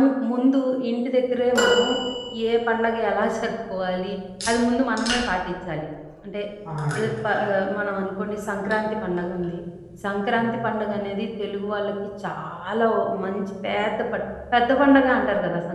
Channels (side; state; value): both; identical; correlation 1.00